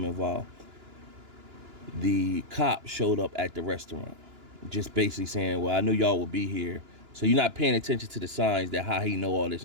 involved. The cop showed up at the restaurant, just basically saying, "Well, I knew y'all would be here." So you're not paying attention to the signs, that how he know all this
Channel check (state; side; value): late; left; 2.9 ms